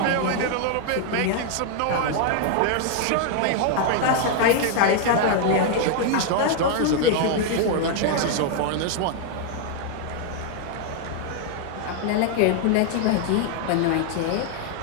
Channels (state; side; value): different; both; correlation 0.00